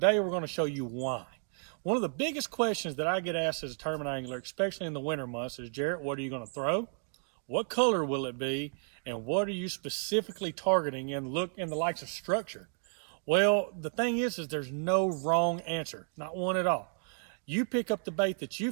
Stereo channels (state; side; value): silent; left; 56 dB below the other